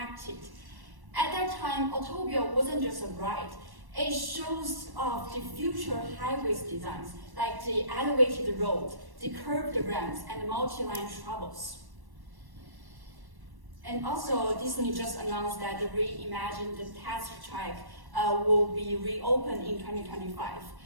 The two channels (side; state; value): left; late; 1.1 ms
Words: At that time, Autopia wasn't just a ride. It shows off the future highways designs, like the elevated road, the curved ramps, and the multi-line travels. And also, Disney just announced that the reimagined test track will be reopened in 2025.